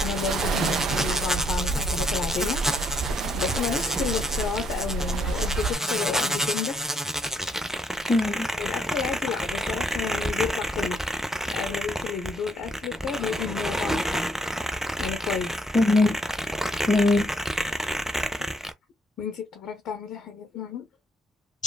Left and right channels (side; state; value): both; normal; correlation 0.70